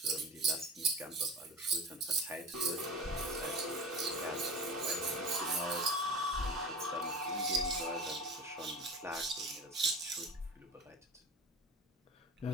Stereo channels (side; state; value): both; normal; correlation 0.33